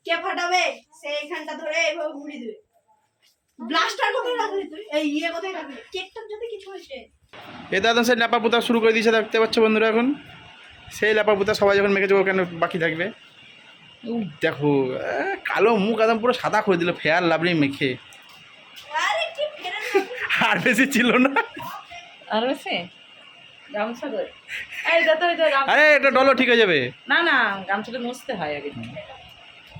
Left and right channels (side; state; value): both; identical; correlation 1.00